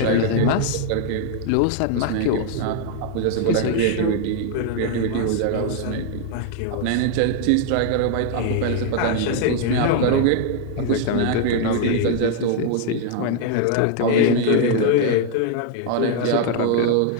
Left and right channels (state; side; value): different; both; correlation 0.00